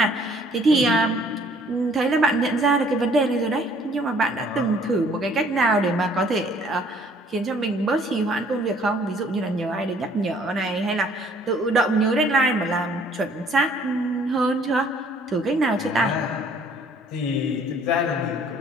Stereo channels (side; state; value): both; normal; correlation 0.59